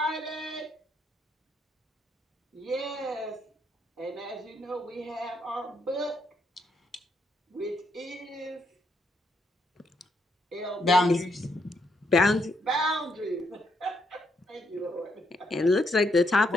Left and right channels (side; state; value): both; normal; correlation 0.76